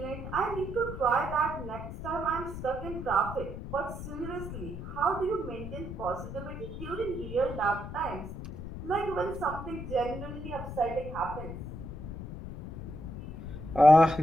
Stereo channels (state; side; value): noise; left; rumble, 9 dB below the sound